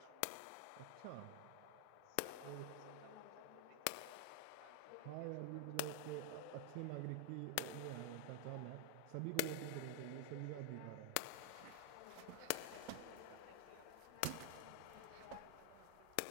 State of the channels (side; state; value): both; different; correlation 0.00